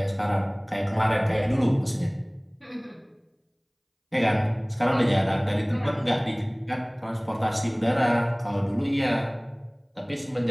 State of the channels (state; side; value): identical; both; correlation 1.00